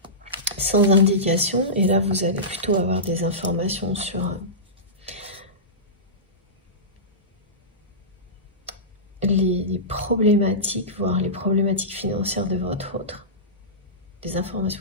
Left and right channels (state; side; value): normal; both; correlation -0.19